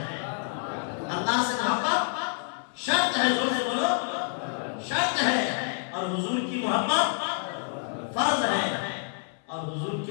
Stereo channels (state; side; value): silent; right; 59 dB below the other